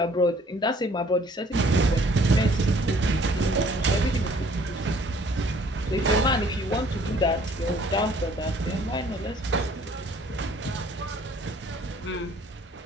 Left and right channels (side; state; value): both; normal; correlation 0.58